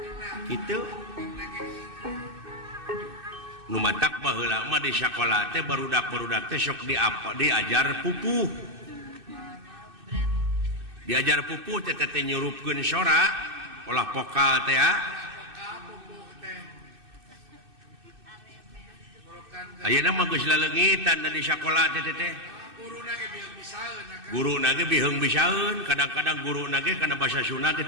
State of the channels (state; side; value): late; left; 2.6 ms